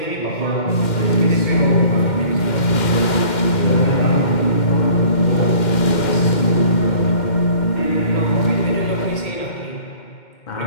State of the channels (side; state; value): right; late; 2.1 ms